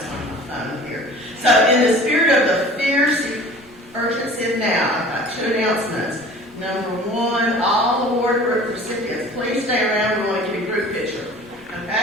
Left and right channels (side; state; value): both; normal; correlation 0.44